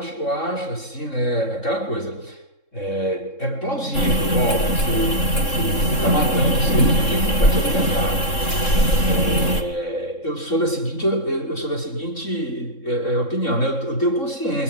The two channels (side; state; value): right; late; 3.7 ms